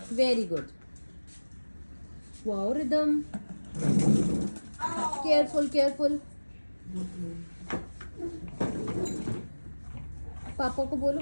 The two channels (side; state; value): both; inverted; correlation -1.00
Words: Very good. Wow rhythm, careful careful. पापा को बोलो,